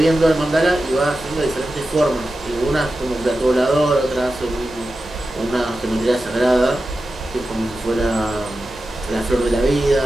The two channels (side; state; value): both; normal; correlation 0.92